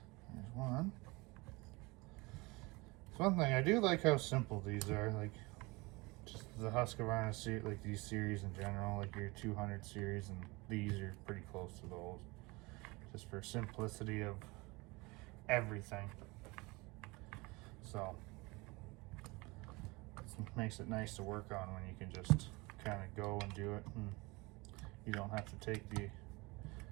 There's one. So one thing, I do like how simple these are. Like, just the Husqvarna series, like these series in general, like your 200 series, and these are pretty close to those. Just for simplicity of everything. So it makes it nice to work on when you can just kind of go and do it, and you don't have to take the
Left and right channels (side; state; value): left; quieter; 24.6 dB